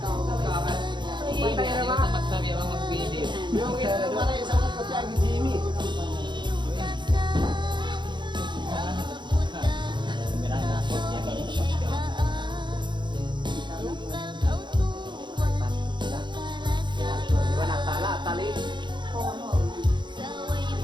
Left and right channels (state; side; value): late; left; 0.22 ms